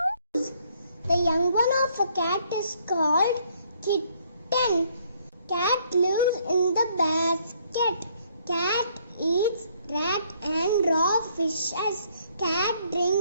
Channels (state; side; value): inverted; both; correlation -0.66